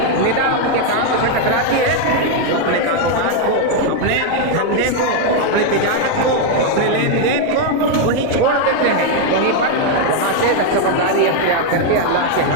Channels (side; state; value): both; different; correlation 0.01